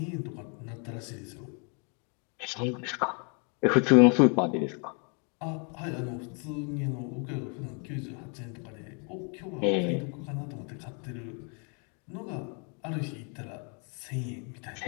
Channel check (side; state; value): right; quieter; 37.8 dB